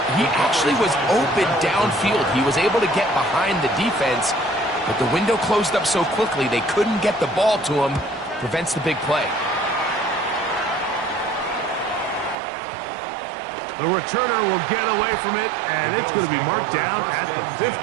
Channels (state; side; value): drops out; left; at 12.4 s